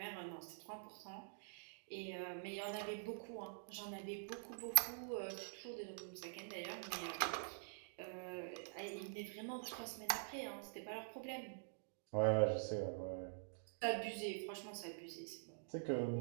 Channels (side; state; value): left; silent; digital silence